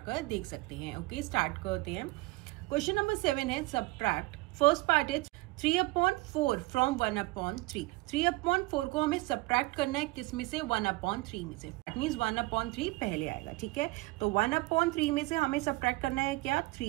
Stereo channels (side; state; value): left; quieter; 22.6 dB